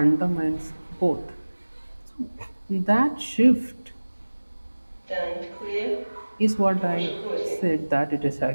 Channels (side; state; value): both; inverted; correlation -1.00